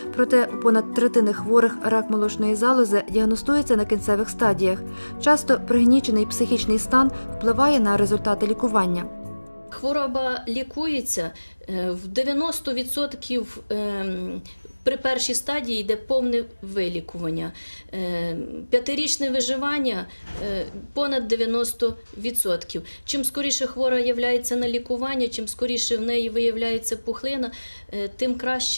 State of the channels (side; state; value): both; inverted; correlation -1.00